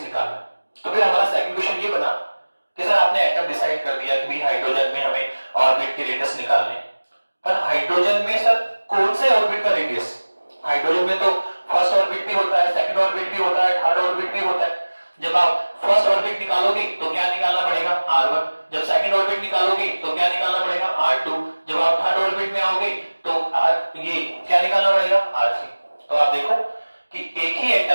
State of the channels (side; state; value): both; inverted; correlation -1.00